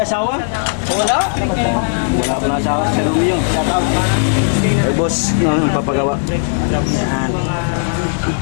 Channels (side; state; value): right; silent; digital silence